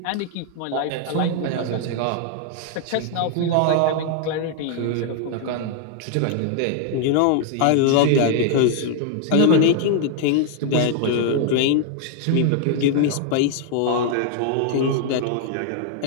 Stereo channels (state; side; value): different; both; correlation 0.00